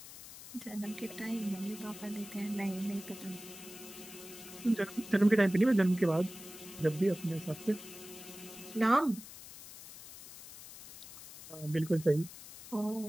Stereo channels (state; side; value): noise; left; hiss, 15 dB below the sound